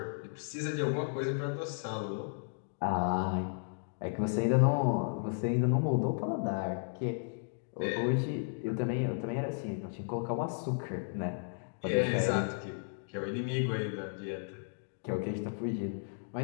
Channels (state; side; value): silent; right; digital silence